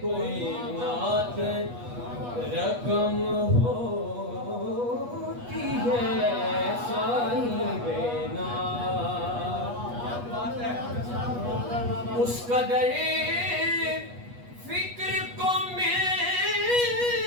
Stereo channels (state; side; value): late; left; 8.3 ms